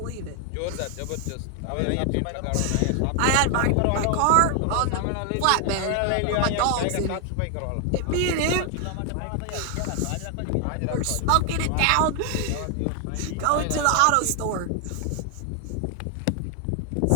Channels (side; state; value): both; different; correlation 0.00